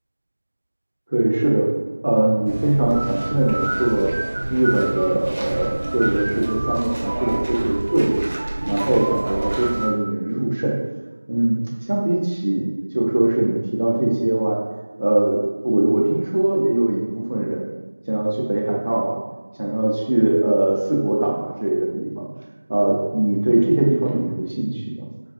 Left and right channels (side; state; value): both; inverted; correlation -1.00